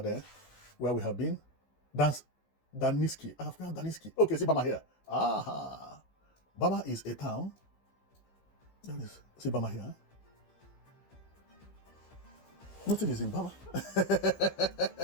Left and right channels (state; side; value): late; right; 15 ms